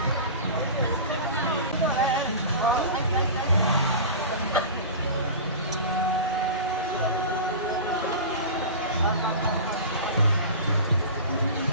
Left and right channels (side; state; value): both; inverted; correlation -0.32